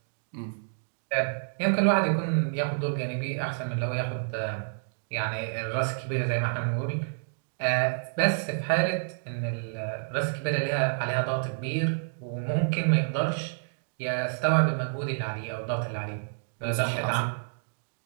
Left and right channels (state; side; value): silent; left; digital silence